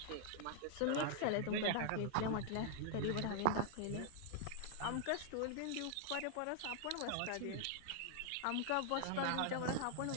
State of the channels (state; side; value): different; both; correlation 0.00